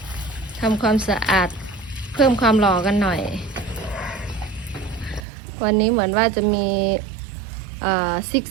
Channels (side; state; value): left; drops out; at 5.2 s